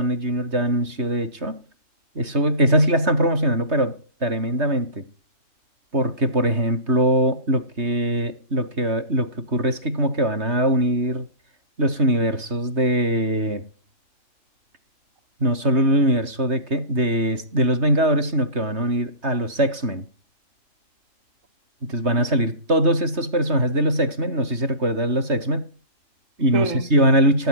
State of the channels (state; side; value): late; left; 3.2 ms